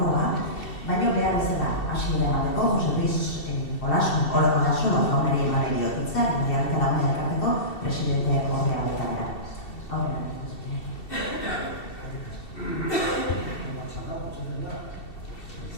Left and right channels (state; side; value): late; right; 2.7 ms